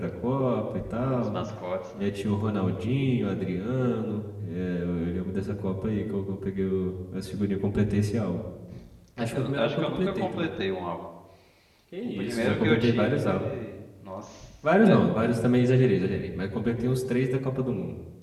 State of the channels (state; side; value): identical; both; correlation 1.00